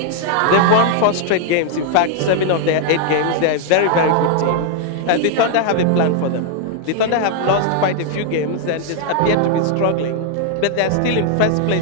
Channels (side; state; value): both; different; correlation 0.00